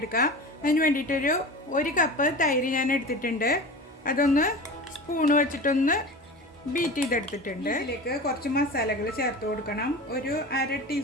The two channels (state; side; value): normal; both; correlation 0.32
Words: അതിന് വേണ്ടിയിട്ടൊരു 1 കപ്പ് തൈര് ഞാൻ എടുത്തിട്ടുണ്ട്. അതൊന്ന് സ്പൂണ് വെച്ചിട്ടൊന്ന് ബീറ്റ് ചെയ്തെടുത്തിട്ടുണ്ട്. ഇതിലേക്ക് കുറച്ച് മസാലകൾ ചേർത്ത് കൊടുക്കണം. ഒരു 1/2